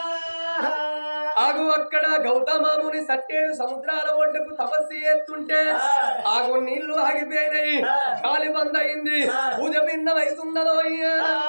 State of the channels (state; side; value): inverted; both; correlation -1.00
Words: ఆగు అక్కడ గౌతమాముని సట్టేడు సముద్రాల ఒడ్డుకు తపస్సు చేస్తుంటే ఆగు నీళ్లు ఆగిపోయినాయి గాలి బంద్ అయింది పూజ భిన్నమవుతున్నదో